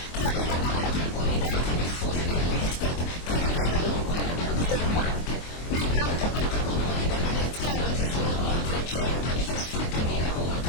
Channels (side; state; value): right; late; 24 ms